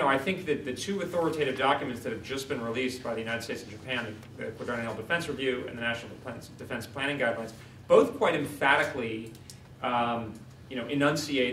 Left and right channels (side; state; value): both; identical; correlation 1.00